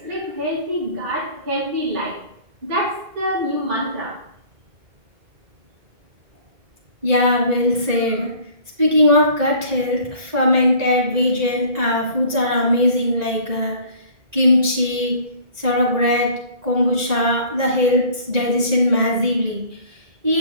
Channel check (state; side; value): late; left; 1.9 ms